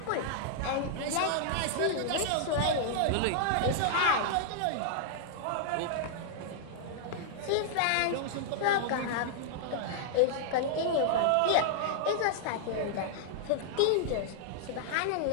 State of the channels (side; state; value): both; different; correlation -0.01